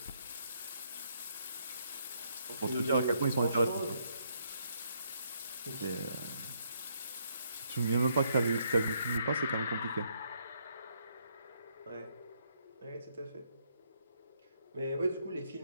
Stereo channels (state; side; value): inverted; both; correlation -0.73